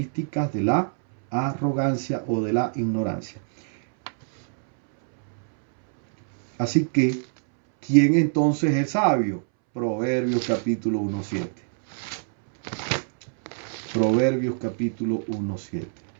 de la arrogancia o de la ignorancia. Así que, ¿quién entonces es sabio? Proverbios capítulo 1:7. Proverbios capítulo 1:7.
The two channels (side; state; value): left; silent; 62 dB below the other